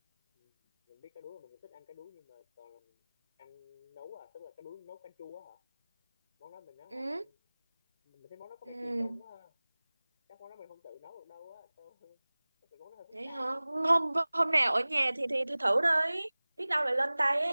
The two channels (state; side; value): inverted; both; correlation -1.00